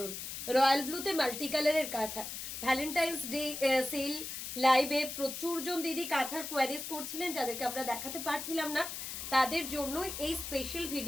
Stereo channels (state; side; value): noise; left; hiss, 7 dB below the sound